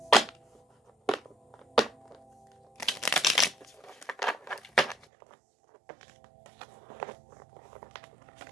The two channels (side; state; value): left; drops out; at 5.1 s